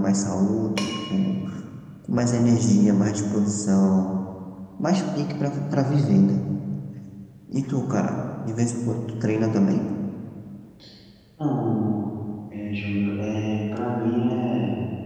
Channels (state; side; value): identical; both; correlation 1.00